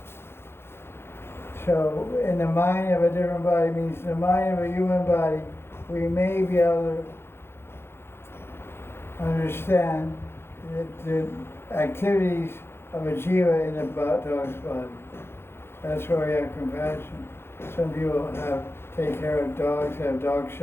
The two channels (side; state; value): right; late; 0.12 ms